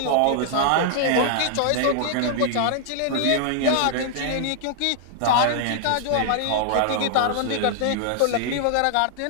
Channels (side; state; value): both; different; correlation -0.01